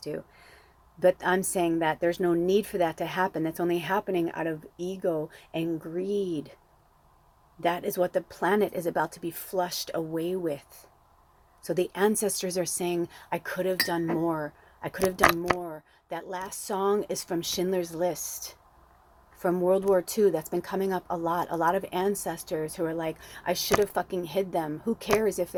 But I'm saying that there's no need for that to happen. That's only happening out of ego and greed. That is what the planet is about to be flushed away with. So the ancestors are saying, I could have done more. I could have done more. That last song is from Schindler's List, from World War II. That's been coming up a lot. A lot of ancestors who are like, I should have fucking hid them. Who cares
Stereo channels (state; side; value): identical; both; correlation 1.00